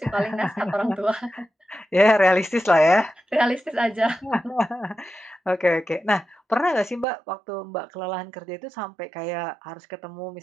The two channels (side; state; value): left; drops out; at 7.1 s